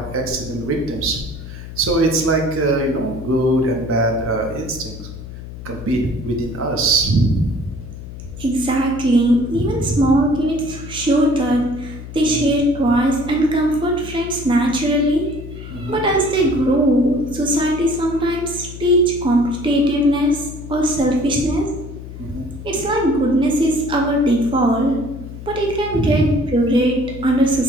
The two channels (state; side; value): noise; left; hum, 12 dB below the sound